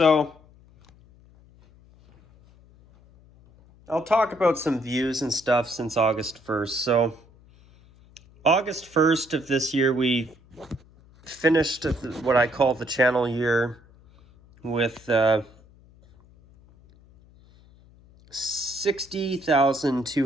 I'll talk about some views and stuff since August 1st. So, August 1st of this year, we finished what I call the channel year with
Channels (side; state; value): left; noise; hum, 27 dB below the sound